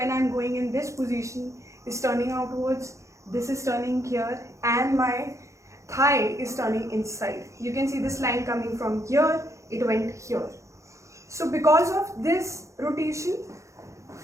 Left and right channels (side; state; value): left; late; 0.15 ms